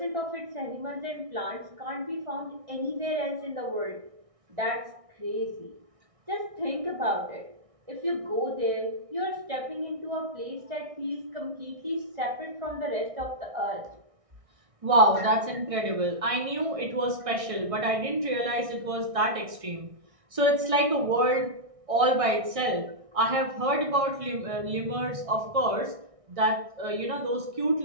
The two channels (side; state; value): left; late; 1.6 ms